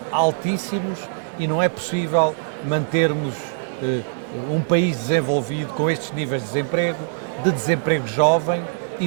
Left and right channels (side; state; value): left; silent; digital silence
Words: altíssimos, e não é possível mantermos um país desenvolvido com estes níveis de desemprego jovem e